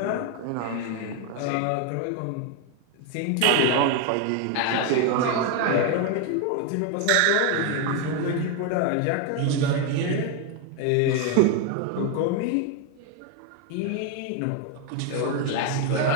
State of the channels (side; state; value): both; different; correlation 0.01